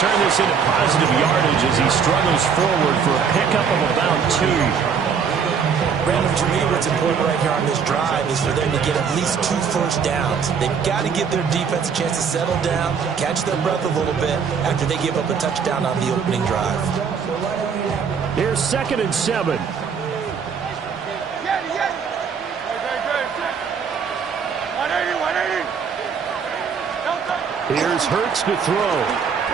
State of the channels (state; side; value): quieter; left; 6.5 dB